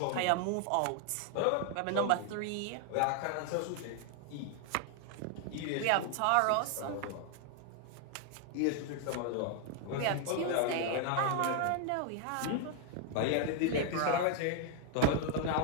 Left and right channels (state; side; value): different; both; correlation 0.00